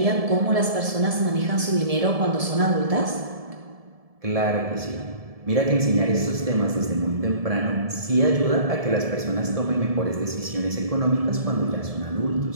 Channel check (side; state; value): left; late; 1.7 ms